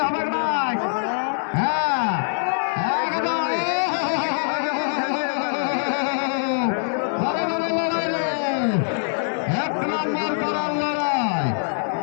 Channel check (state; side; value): silent; right; digital silence